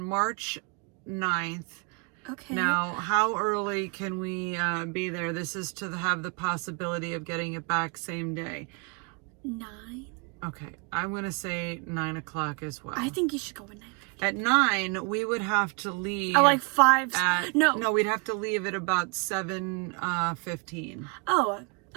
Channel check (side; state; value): left; quieter; 33.4 dB